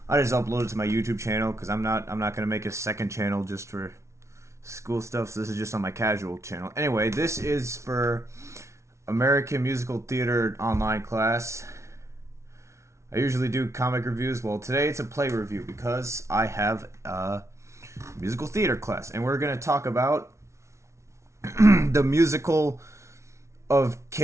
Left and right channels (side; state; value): left; late; 0.13 ms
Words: upload it to my YouTube channel because I'm not gonna make a second channel just for school stuff. So this is just on my casual channel. Anyway, this is for American Musical Theater online class. I usually do comic reviews. Well, today it's a play review because I have a musical theater class, and we're gonna talk about the musical of